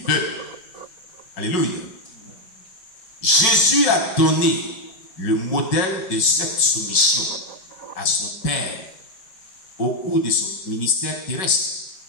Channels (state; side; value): late; right; 5.3 ms